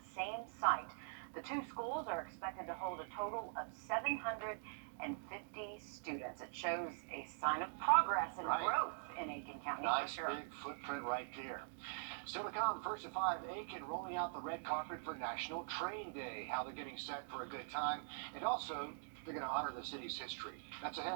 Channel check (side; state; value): left; silent; digital silence